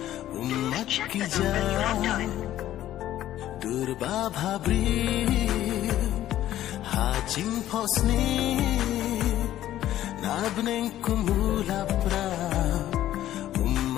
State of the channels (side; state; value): right; quieter; 13.0 dB